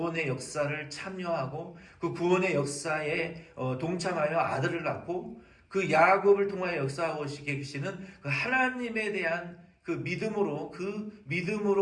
역사를 참여하고 그 구원의 역사에 동참하여 아들을 낳고 그 야곱을 통하여 역사하고 계시는 그 하나님에 대한 그 믿음으로 그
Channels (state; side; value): identical; both; correlation 1.00